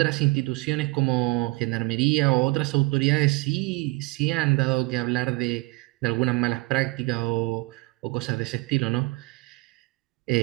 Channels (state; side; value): quieter; left; 25.1 dB